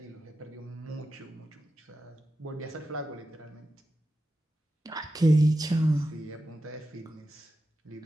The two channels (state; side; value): normal; both; correlation 0.91